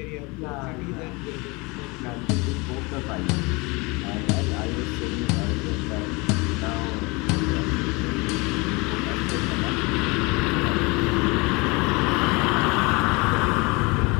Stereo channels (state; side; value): quieter; right; 26.4 dB